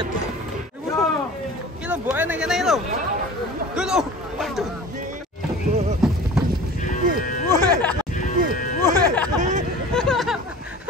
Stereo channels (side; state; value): both; normal; correlation 0.40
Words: Iki lho mboke nang kene lho. Dulu. Waduh.